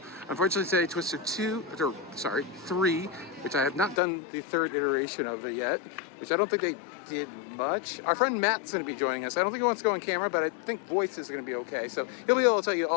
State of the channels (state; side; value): drops out; right; at 4.0 s